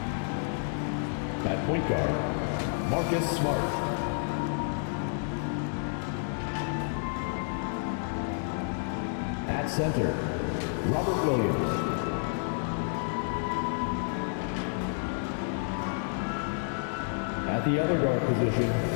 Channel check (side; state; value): right; silent; 58 dB below the other